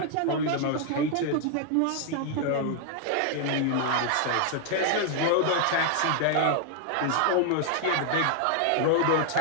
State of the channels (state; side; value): different; both; correlation 0.00